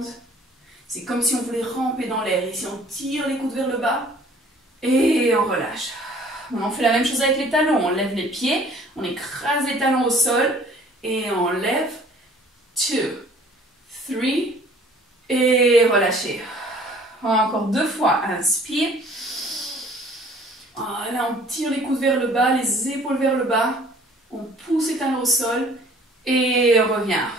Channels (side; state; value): both; normal; correlation 0.53